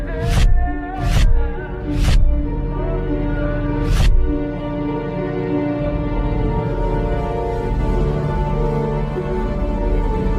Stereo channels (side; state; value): both; identical; correlation 1.00